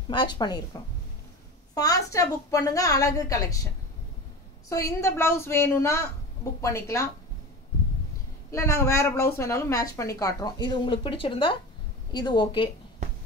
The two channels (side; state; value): both; normal; correlation 0.30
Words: மேட்ச் பண்ணியிருக்கோம். ஃபாஸ்ட்டாக புக் பண்ணுங்க, அழகு கலெக்ஷன். ஸோ இந்த ப்ளவுஸ் வேணும்னா புக் பண்ணிக்கலாம், இல்லை நாங்கள் வேறு ப்ளவுஸ் வேணாலும் மேட்ச் பண்ணி காட்டுறோம். இது உங்களுக்கு பிடிச்சிருந்தா இது ஓகே.